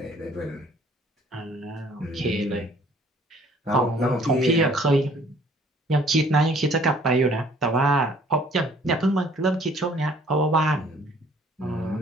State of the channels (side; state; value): both; normal; correlation 0.57